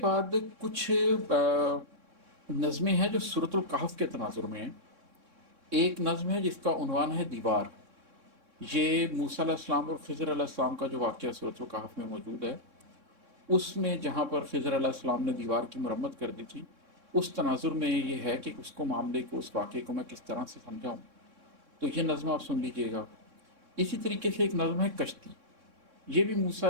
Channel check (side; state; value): left; late; 3.6 ms